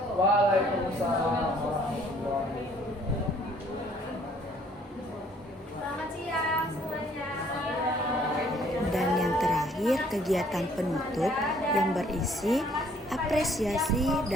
Waalaikumsalam warahmatullahi wabarakatuh. Selamat siang semuanya. Dan yang terakhir, kegiatan penutup yang berisi apresiasi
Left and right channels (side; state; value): both; normal; correlation 0.61